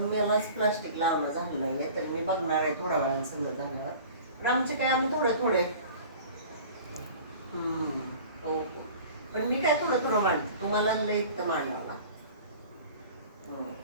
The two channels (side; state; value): both; inverted; correlation -0.43